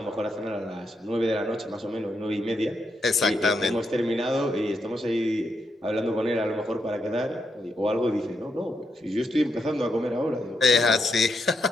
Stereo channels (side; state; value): both; normal; correlation 0.81